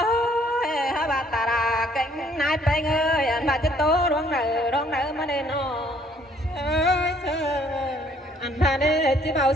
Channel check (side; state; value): both; normal; correlation 0.62